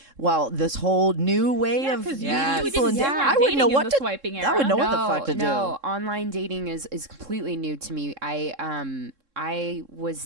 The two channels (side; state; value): left; late; 3.7 ms